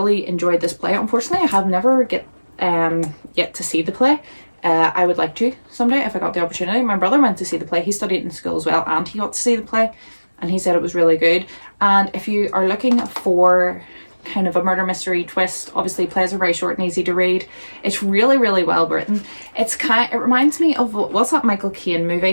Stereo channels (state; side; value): inverted; both; correlation -1.00